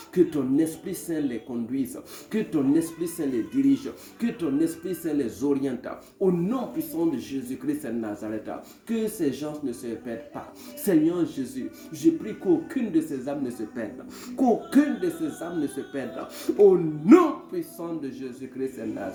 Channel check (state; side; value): identical; both; correlation 1.00